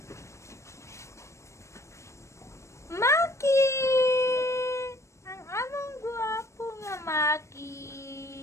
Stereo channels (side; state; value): right; late; 0.14 ms